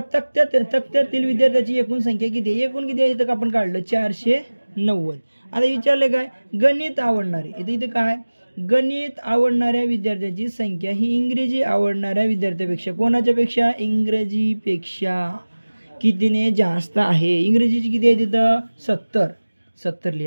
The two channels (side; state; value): both; inverted; correlation -1.00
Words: तक्त्यातील विद्यार्थ्याची एकूण संख्या किती आहे. एकूण किती आहे इथं आपण काढलं 490. आता विचारले काय गणित आवडणारे इथे काय गणित आवडणाऱ्या विद्यार्थ्याची संख्या ही इंग्रजी आवडणाऱ्या विद्यार्थ्यापेक्षा कोणाच्या पेक्षा इंग्रजीपेक्षा कितीने जास्त आहे. इंग्रजीची किती आहे तिथं 70